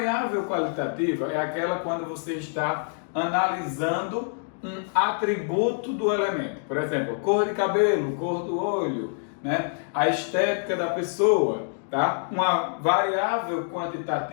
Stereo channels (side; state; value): right; silent; digital silence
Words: qualitativa é aquela quando você está analisando um atributo do elemento. Por exemplo, cor de cabelo, cor do olho, né? A estética da pessoa. Tá? Uma variável